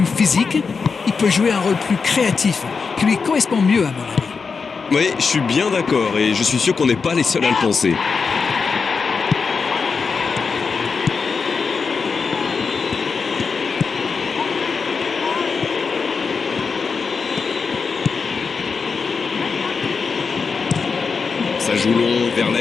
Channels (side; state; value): right; quieter; 5.2 dB